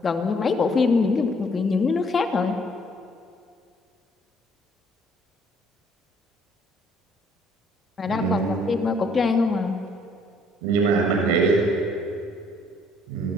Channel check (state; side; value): normal; both; correlation 0.63